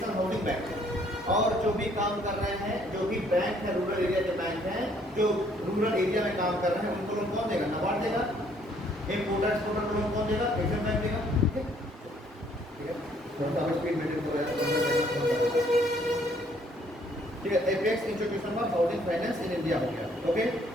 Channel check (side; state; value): both; normal; correlation 0.64